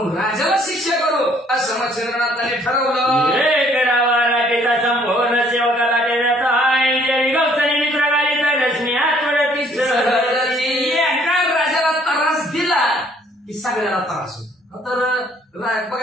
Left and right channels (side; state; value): both; normal; correlation 0.62